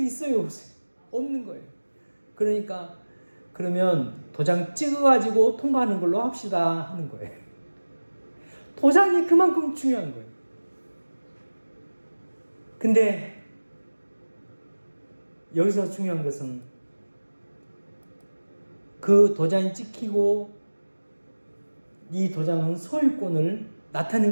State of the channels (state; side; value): inverted; both; correlation -1.00